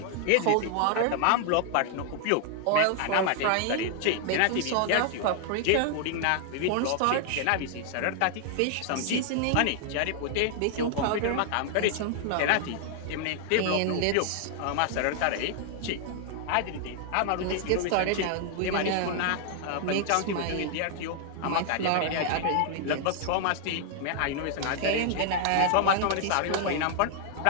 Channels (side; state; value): both; different; correlation 0.00